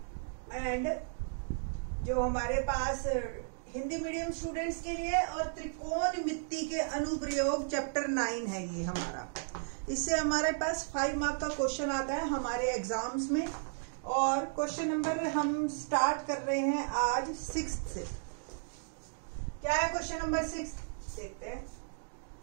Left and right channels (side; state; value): left; silent; digital silence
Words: and जो हमारे पास हिंदी मीडियम स्टूडेंट्स के लिए और त्रिकोणमिति के अनुप्रयोग चैप्टर 9 है ये हमारा। इससे हमारे पास 5 मार्क का क्वेश्चन आता है हमारे एग्जाम्स में। और क्वेश्चन नंबर हम स्टार्ट कर रहे हैं आज 6 से। क्या है क्वेश्चन नंबर 6? देखते हैं।